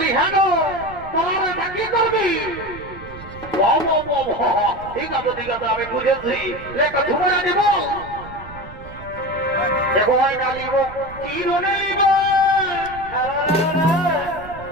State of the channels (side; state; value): right; noise; rumble, 16 dB below the sound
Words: হ্যাঁ গো তোমার এটা কি করবি ঠিক আছে আমি বুঝেছি একটা ধুমরা দিব দেখো হয় না লিব চিরনে লিব